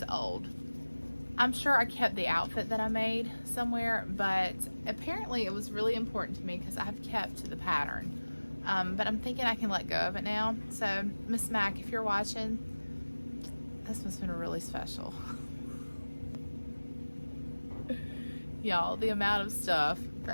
old. I'm sure I kept the outfit that I made somewhere, but apparently it was really important to me because I've kept the pattern. But I'm thinking I can let go of it now. So, Miss Mac, if you're watching, this must have been really special. Y'all, the amount of stuff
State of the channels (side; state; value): both; inverted; correlation -1.00